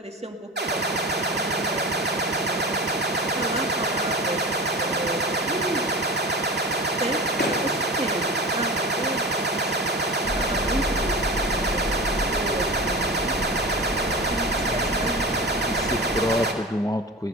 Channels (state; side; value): normal; both; correlation 0.31